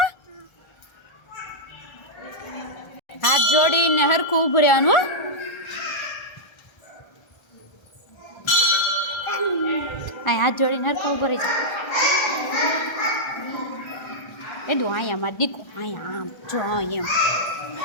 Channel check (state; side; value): late; right; 1.3 ms